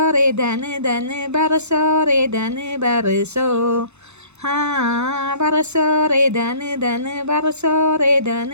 ರೇ ಧನ ಧನ ಬರಸೋ ರೇ ಧನ ಬರಸೋ ಹಾಂ ಬರಸೋ ರೇ ಧನ ಧನ ಬರಸೋ ರೇ ಧನ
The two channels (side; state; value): left; late; 0.81 ms